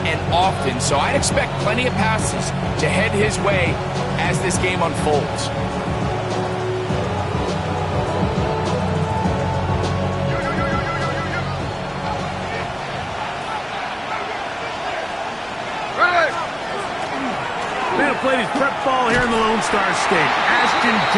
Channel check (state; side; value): identical; both; correlation 1.00